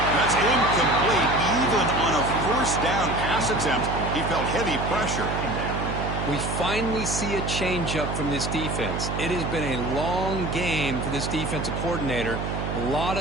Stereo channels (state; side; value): noise; right; hum, 4 dB below the sound